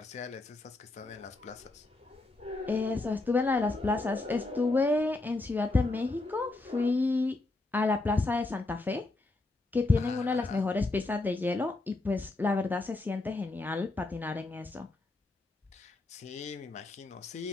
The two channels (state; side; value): quieter; right; 3.1 dB